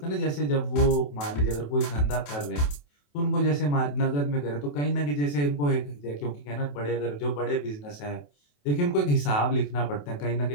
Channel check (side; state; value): right; late; 28 ms